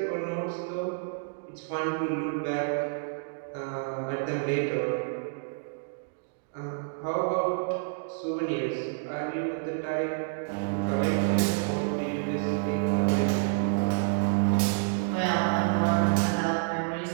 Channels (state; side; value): silent; left; digital silence